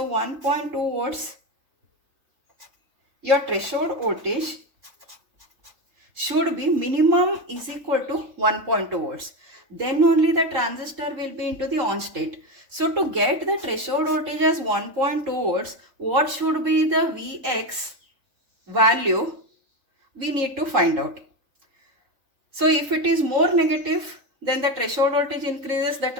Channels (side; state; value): left; late; 3.5 ms